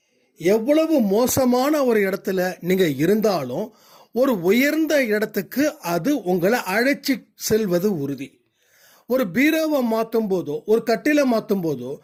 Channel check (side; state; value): both; identical; correlation 1.00